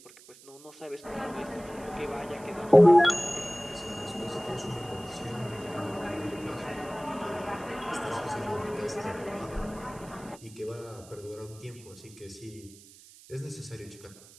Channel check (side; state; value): right; noise; hiss, 21 dB below the sound